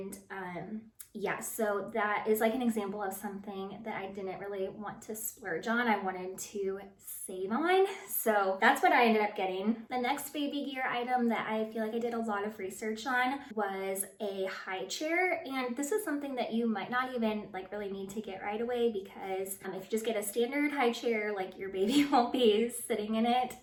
yeah, so that is like an example of something that I didn't really want to splurge on. I wanted to save on. So that's what I ended up getting. The next baby gear item that I feel like I did a lot of research on was a high chair. And this is something that you might not even like really need to get right away, because if you just get a standard high chair, like your baby won't be sitting in it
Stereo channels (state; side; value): identical; both; correlation 1.00